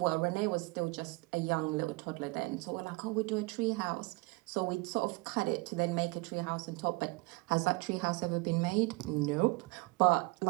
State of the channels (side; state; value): left; quieter; 24.8 dB